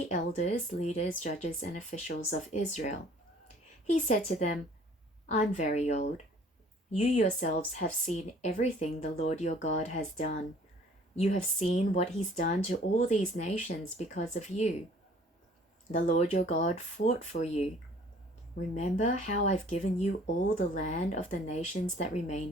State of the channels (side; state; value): both; normal; correlation 0.54